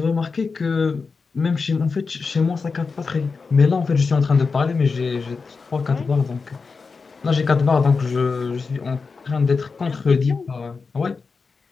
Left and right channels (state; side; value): quieter; right; 4.7 dB